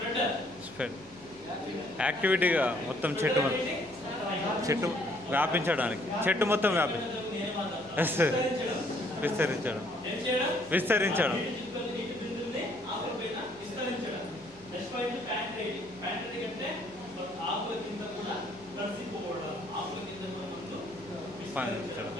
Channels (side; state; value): left; noise; hum, 25 dB below the sound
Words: స్ప్రెడ్ యాక్టివిటీగా మొత్తం చెట్టు వ్యాపించడానికి, చెట్టు మొత్తం విస్తరించడం. ఆకుల కింద కూడా కలిసిపోవడం, ఆకుల కింద కూడా ముందు